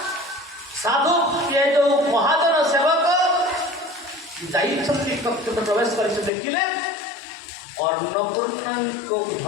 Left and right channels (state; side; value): drops out; right; at 6.3 s